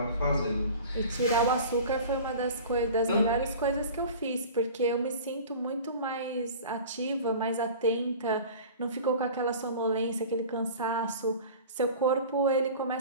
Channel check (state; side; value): inverted; both; correlation -0.40